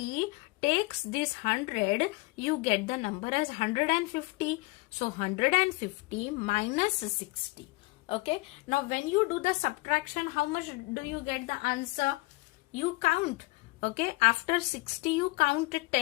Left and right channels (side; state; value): right; quieter; 24.1 dB